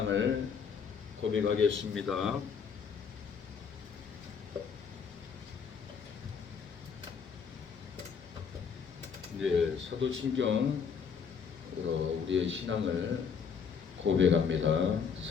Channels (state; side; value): quieter; right; 6.4 dB